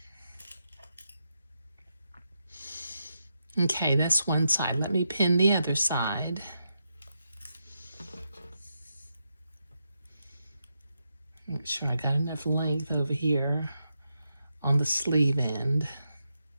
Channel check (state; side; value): inverted; both; correlation -0.84